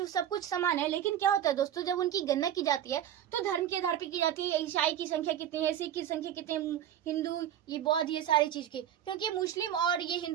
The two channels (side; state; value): left; quieter; 10.5 dB